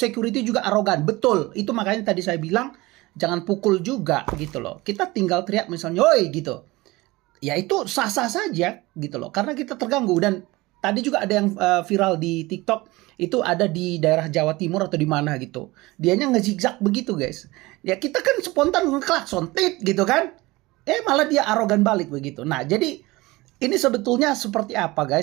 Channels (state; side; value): quieter; left; 21.0 dB